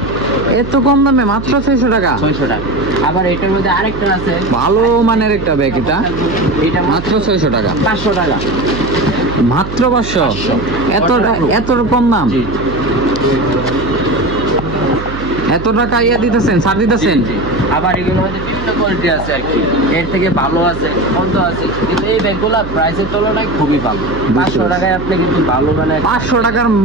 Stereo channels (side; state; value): right; noise; hum, 10 dB below the sound